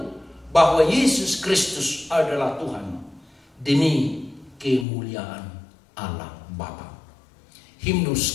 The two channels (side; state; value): right; drops out; at 4.9 s